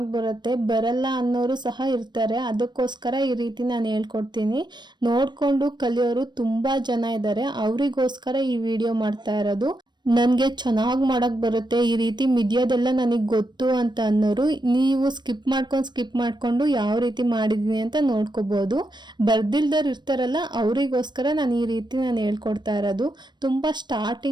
ಬರುತ್ತೆ. ಬರಲ್ಲ ಅನ್ನೋರು ಸಹ ಇರ್ತಾರೆ, ಅದಕ್ಕೋಸ್ಕರ ಈ ರೀತಿ ನಾನು ಹೇಳ್ಕೊಡ್ತೀನಿ. ನೋಡ್ಕೊಂಡು ಕಲಿಯೋರು ತುಂಬಾ ಜನ ಇದ್ದಾರೆ, ಅವರಿಗೋಸ್ಕರ ಈ ವಿಡಿಯೋ ಮಾಡ್ತಾ ಇರೋದು. ನನಗೆ ಚೆನ್ನಾಗಿ ಮಾಡಕ್ ಬರುತ್ತೆ, ಈ ರೀತಿ ಮಿದಿಯೋದೆಲ್ಲ ನನಗೆ ಗೊತ್ತು ಅಂತ ಅನ್ನೋರು ನೀವು ಸ್ಕಿಪ್ ಮಾಡ್ಕೊಂಡು ಯಾವ ರೀತಿ ಮಾಡಿದೀನಿ ಅಂತ ನೋಡ್ಕೋಬಹುದು. ಬರ್ದಿಲ್ದವ್ರು ಇರ್ತಾರಲ್ಲ ಅವರಿಗೋಸ್ಕರ ನಾನು ಈ ರೀತಿ ನಾನು ಹೇಳ್ಕೊಡ್ತಾ ಇರೋದು. ತುಂಬಾ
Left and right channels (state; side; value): late; left; 0.22 ms